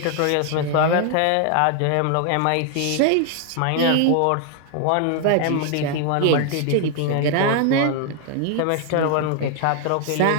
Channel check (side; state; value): both; different; correlation 0.00